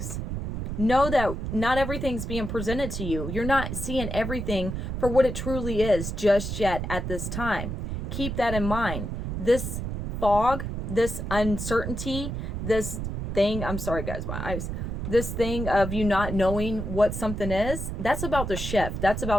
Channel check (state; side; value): noise; right; rumble, 4 dB below the sound